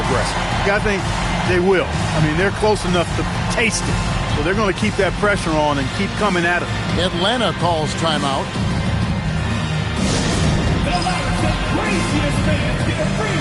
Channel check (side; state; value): both; identical; correlation 1.00